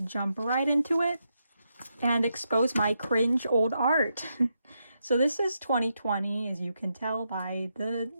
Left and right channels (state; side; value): inverted; both; correlation -0.83